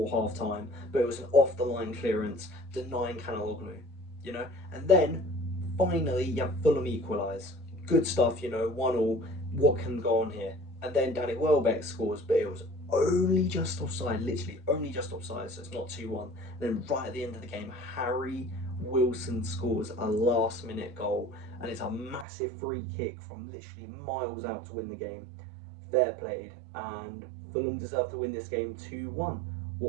half-time, but it was an off-the-line clearance, denying Canaloglu, you know? And then, finally, you have Fulham equalise. Good stuff, you know, 1-1. What can go on here? And then Danny Welbeck scores, but it was only just offside, literally only just offside, so it's not 2-1. Then right at the end of the game, Harry Wilson scores a last-minute goal, and it's a massive free kick from literally miles out to win the game. Fair played, and Fulham deserved to win this game 2-1.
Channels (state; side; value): drops out; left; at 22.2 s